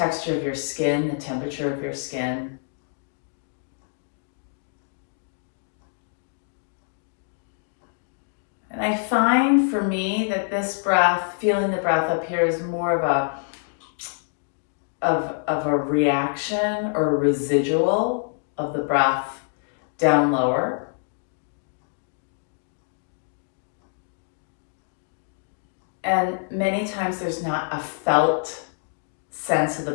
of your skin, the temperature of your skin. And I find for me that this breath, feeling the breath up here, is more of a reaction or a residual of the breath down lower. And many times there's not a felt sense of the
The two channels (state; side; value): silent; right; digital silence